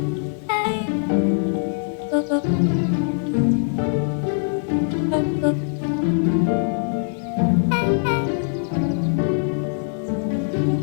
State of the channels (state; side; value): silent; right; digital silence